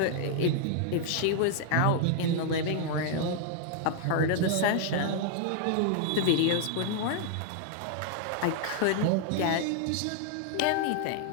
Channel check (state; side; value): different; both; correlation 0.00